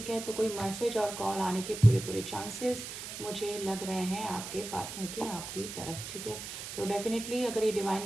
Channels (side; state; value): right; noise; hiss, 8 dB below the sound